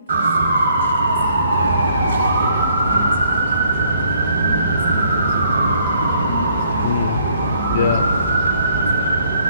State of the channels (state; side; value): inverted; both; correlation -0.65